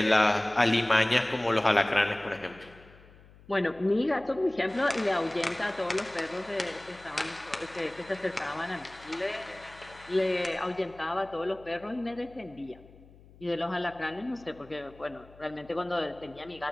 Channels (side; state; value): left; noise; hum, 23 dB below the sound